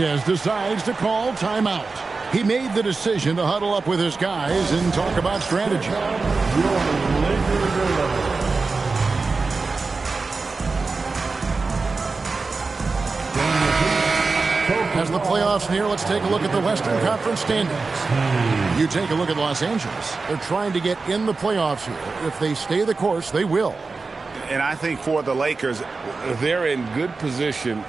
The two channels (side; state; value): left; quieter; 4.1 dB